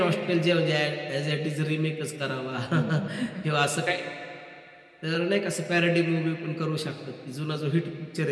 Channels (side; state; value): both; identical; correlation 1.00